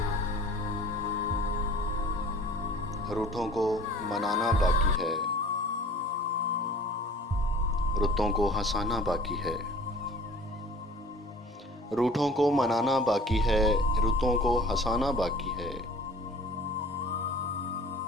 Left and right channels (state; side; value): normal; both; correlation 0.47